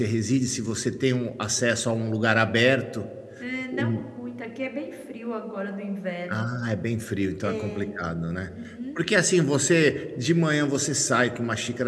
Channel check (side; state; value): both; identical; correlation 1.00